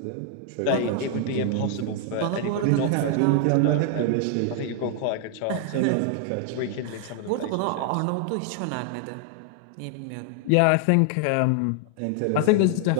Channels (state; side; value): different; both; correlation 0.00